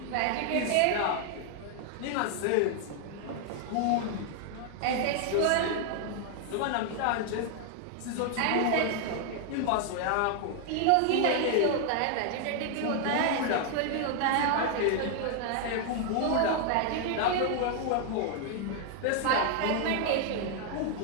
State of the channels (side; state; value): both; different; correlation 0.00